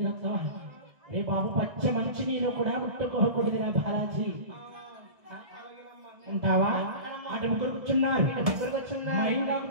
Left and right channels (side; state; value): left; late; 1.6 ms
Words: రే బాబు పచ్చ మంచి నీళ్ళు కూడా ముట్టుకోకూడదురా బాలాజీ ఉంటావా అటు ముగ్గురు కూర్చున్నారు